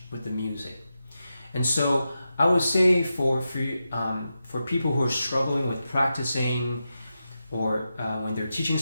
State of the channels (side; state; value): both; inverted; correlation -0.89